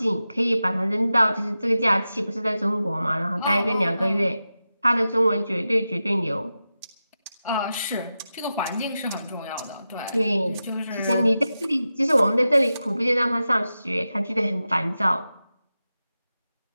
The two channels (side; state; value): both; inverted; correlation -0.92